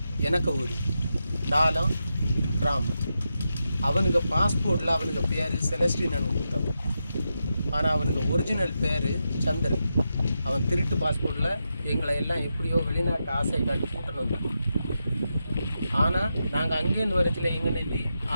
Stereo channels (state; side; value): inverted; both; correlation -0.87